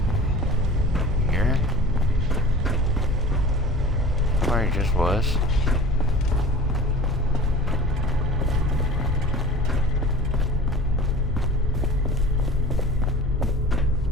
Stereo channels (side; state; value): both; normal; correlation 0.39